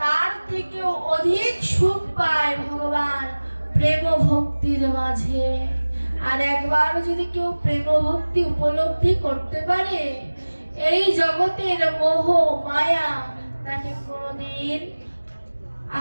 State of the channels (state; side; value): inverted; both; correlation -1.00